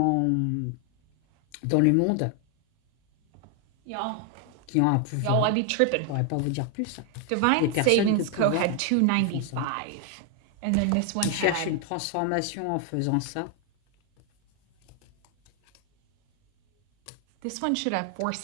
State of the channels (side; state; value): both; different; correlation 0.00